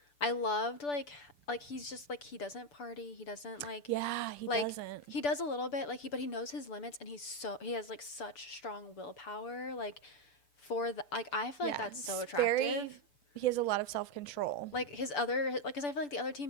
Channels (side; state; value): right; late; 6.9 ms